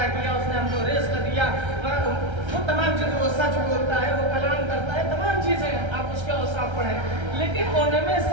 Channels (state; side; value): late; left; 1.3 ms